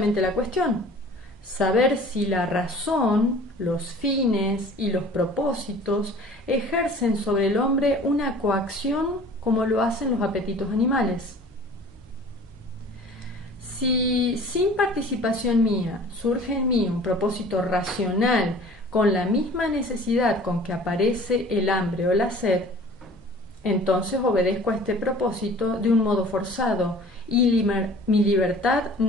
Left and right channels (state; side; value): normal; both; correlation 0.46